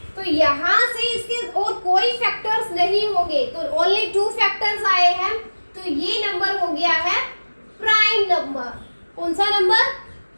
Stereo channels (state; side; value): inverted; both; correlation -1.00